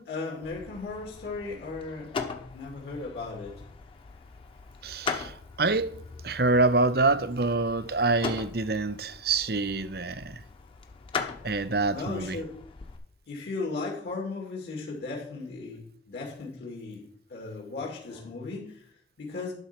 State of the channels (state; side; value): normal; both; correlation 0.02